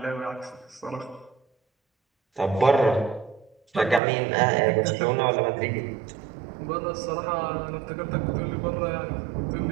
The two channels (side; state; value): left; drops out; at 4.0 s